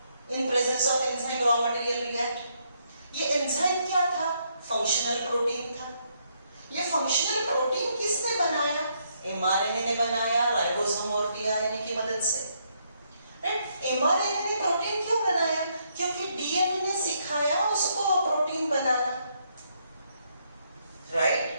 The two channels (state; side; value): inverted; both; correlation -0.74